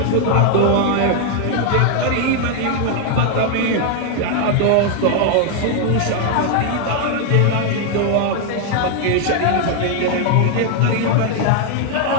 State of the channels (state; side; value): different; both; correlation 0.00